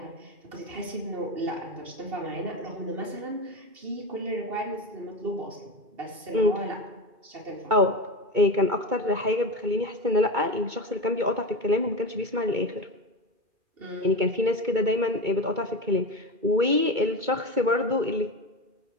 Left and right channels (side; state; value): left; late; 2.2 ms